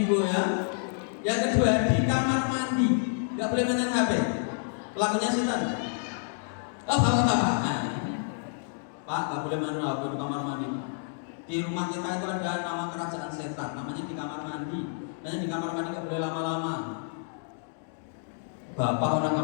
ya. Yang kedua di kamar mandi nggak boleh mainin HP, lakunya setan. Oh bapak, Pak nggak boleh mainin HP di kamar mandi. Di rumah kita itu ada nama kerajaan setan, namanya di kamar mandi. Makanya di kamar mandi nggak boleh lama-lama. Bapak orang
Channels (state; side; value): silent; right; digital silence